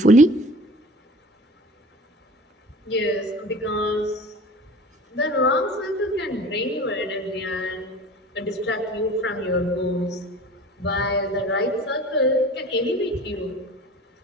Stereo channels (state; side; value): normal; both; correlation 0.41